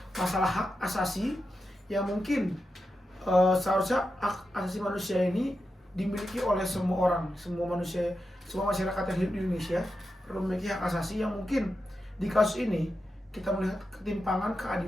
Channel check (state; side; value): normal; both; correlation 0.89